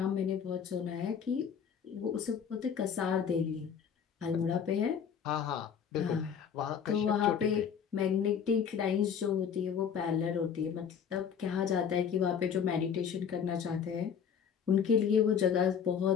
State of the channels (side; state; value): right; quieter; 7.5 dB